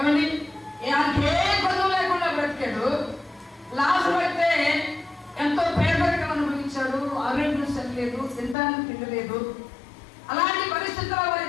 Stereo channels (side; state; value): right; drops out; at 8.6 s